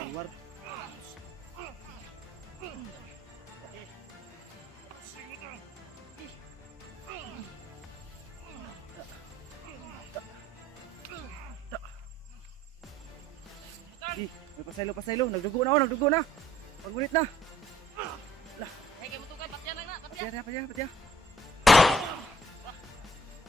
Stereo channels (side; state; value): both; normal; correlation 0.60